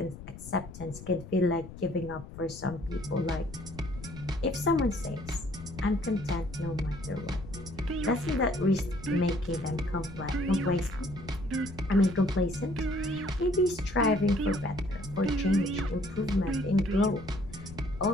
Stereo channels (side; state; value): left; noise; rumble, 13 dB below the sound